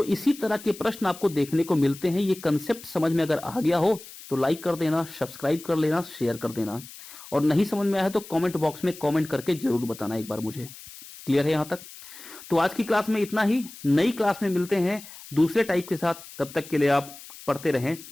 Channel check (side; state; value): left; noise; hiss, 17 dB below the sound